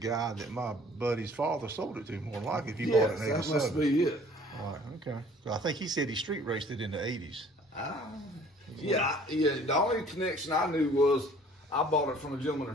that my buddy's father sold it to, more than likely, if you Yes, bought it in that must 87. be it. Right, okay. So I think he said he street raced it in the 80s. Yeah. The only connection I knew was I bought it from a gentleman in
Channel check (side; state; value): both; normal; correlation 0.53